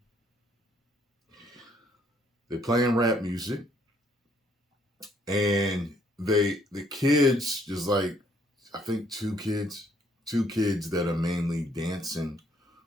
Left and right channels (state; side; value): normal; both; correlation 0.67